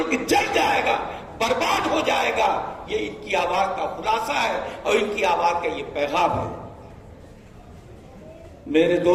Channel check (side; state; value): both; identical; correlation 1.00